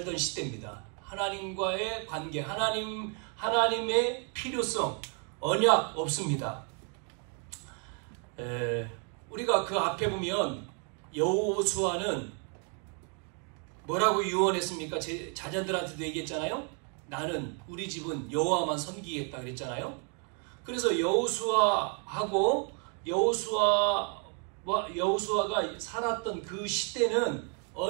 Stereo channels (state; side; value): quieter; left; 39.5 dB